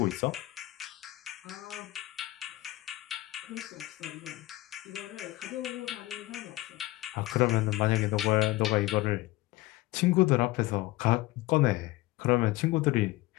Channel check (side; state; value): right; quieter; 18.7 dB